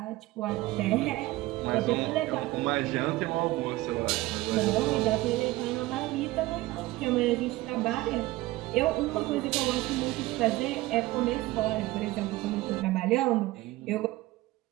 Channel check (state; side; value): quieter; left; 18.4 dB